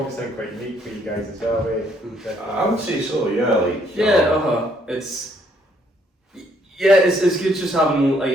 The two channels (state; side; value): normal; both; correlation 0.68